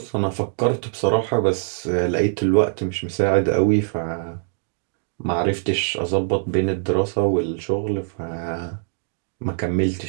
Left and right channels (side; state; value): left; silent; digital silence